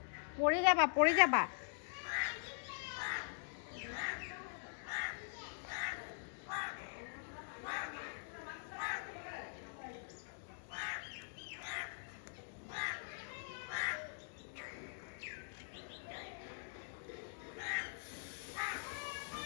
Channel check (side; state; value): right; silent; digital silence